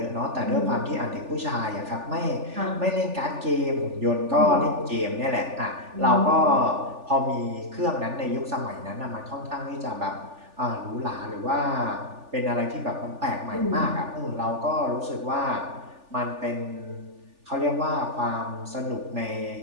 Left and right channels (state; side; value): late; left; 3.4 ms